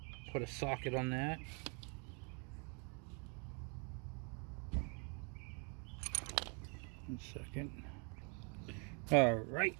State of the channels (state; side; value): quieter; left; 36.5 dB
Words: put a socket on that. One second. Alright,